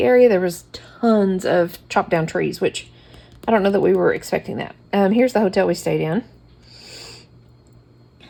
area. There was tons of chopped down trees, which I don't know that we were expecting that. Here's the hotel we stayed in.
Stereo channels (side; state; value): both; identical; correlation 1.00